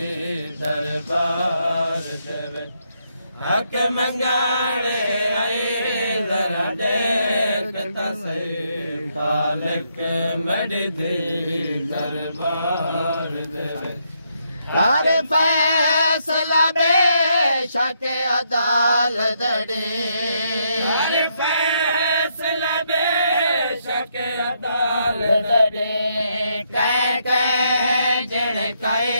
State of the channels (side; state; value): both; inverted; correlation -0.76